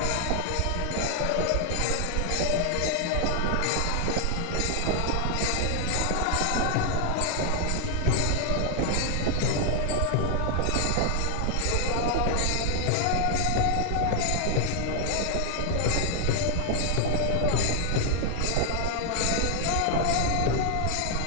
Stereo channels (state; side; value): different; both; correlation 0.00